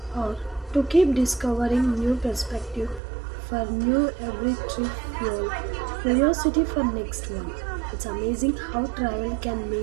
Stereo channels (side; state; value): left; drops out; at 3.0 s